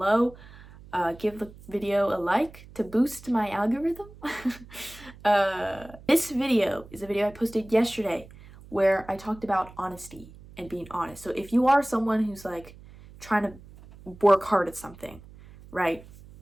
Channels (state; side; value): noise; right; hum, 20 dB below the sound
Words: Give the video a like to boost my algorithm. This video is a video I posted yesterday where I talked about honesty and being honest. So if you are someone who's like trying to work hard at something, right,